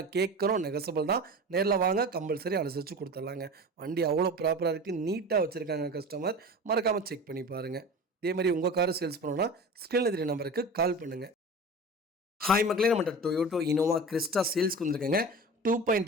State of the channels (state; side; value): normal; both; correlation 0.34